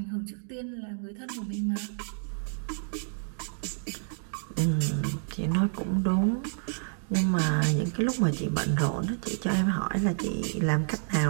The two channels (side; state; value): left; silent; digital silence